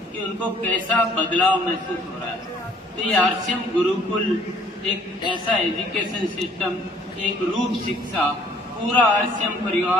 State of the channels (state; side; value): normal; both; correlation 0.59